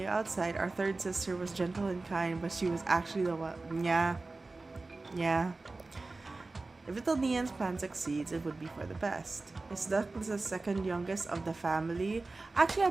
outside, our third sister was gentle and kind, but she was actually the one. Yeah. If little Nian's plan succeeds, it would be for the best. Is Dusk the second youngest of the family? Actually,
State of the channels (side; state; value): left; quieter; 3.4 dB